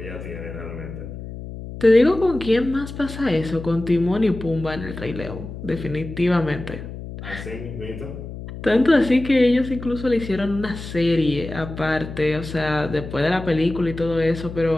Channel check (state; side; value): noise; left; hum, 10 dB below the sound